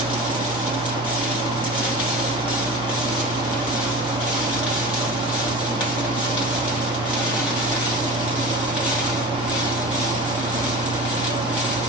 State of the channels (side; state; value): both; normal; correlation 0.33